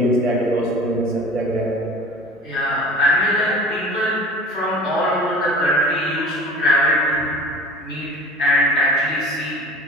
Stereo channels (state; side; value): normal; both; correlation 0.41